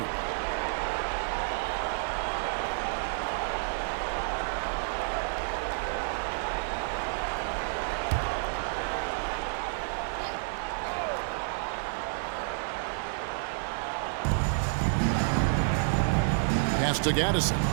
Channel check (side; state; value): left; silent; 58 dB below the other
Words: Pass to Gaddison.